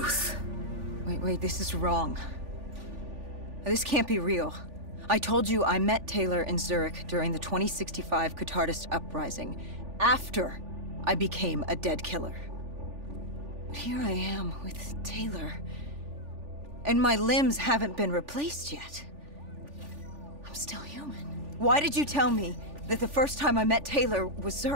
Wait, this is wrong. This can't be real. I told you I met Taylor in Zurich during the 2065 Catardist Uprising, after I became a dead killer. But here I am with Taylor, and my limbs haven't been replaced yet. I'm still human. Why did you tell me that the first time I met Taylor was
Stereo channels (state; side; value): late; left; 3.4 ms